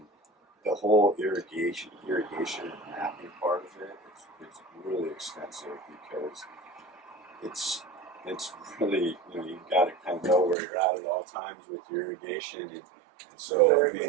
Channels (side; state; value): left; drops out; at 10.6 s